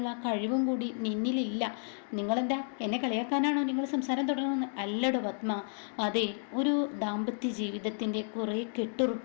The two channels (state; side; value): silent; right; 57 dB below the other